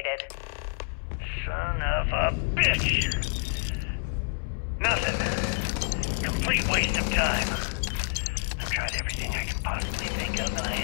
Son of a bitch! Nothing. Complete waste of time. I've tried everything I can possibly think of, and I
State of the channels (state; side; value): silent; right; 59 dB below the other